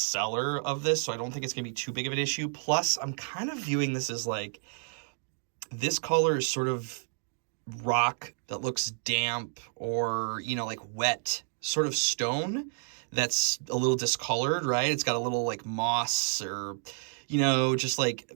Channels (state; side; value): silent; left; digital silence